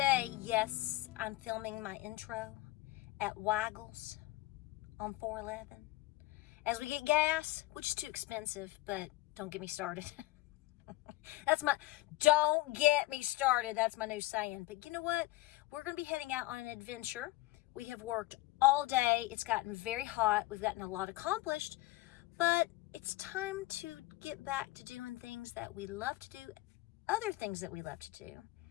yes, I'm filming my intro at Waggles on 411 as we get gas, which is too expensive, but don't get me started. Don't get me started. That's my new saying. But you know what? We're going to be heading out on an adventure. We have worked all day. It's gotten very hot. We've gotten a lot accomplished, but it's time to get back to doing things that we love to do, other things that we love to do,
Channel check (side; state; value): right; quieter; 18.6 dB